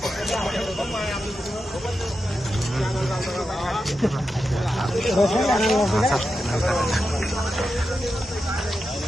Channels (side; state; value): both; normal; correlation 0.88